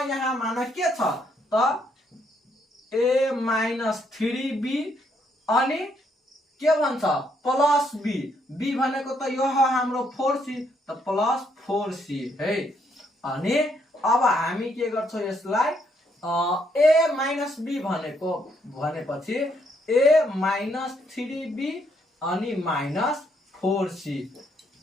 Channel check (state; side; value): normal; both; correlation 0.73